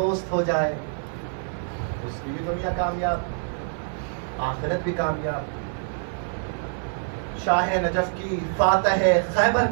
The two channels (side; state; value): left; silent; 56 dB below the other